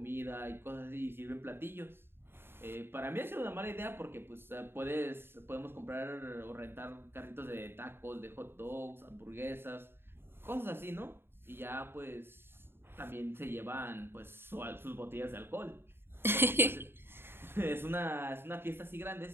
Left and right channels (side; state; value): left; late; 0.11 ms